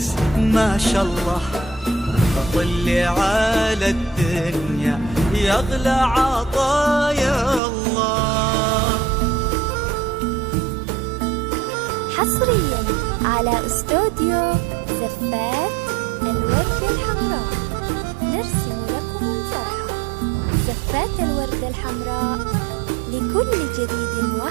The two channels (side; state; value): left; drops out; at 7.6 s